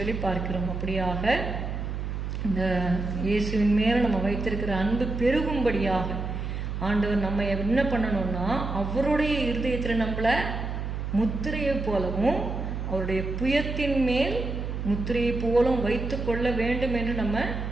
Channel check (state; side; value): noise; right; hum, 4 dB below the sound